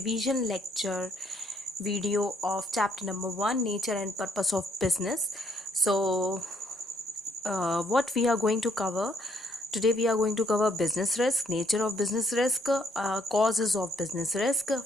lecture video of chapter number 1, nature and purpose of business. So what we are going to cover today, we are going to cover business risk, nature of business risk, causes of business risk,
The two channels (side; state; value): both; normal; correlation 0.69